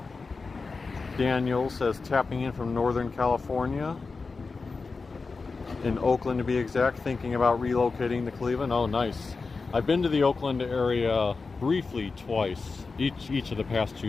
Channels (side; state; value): right; quieter; 4.3 dB